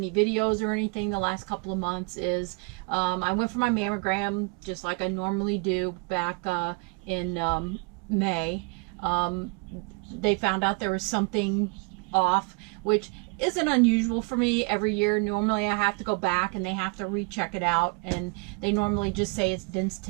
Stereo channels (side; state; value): left; quieter; 31.7 dB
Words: videos or anything the last couple of months is I went for my mammogram just like I normally do back in May. They found out there was something off, which isn't unusual for me every year. Normally I have to go back and they have to recheck it out, and they normally just say it's dense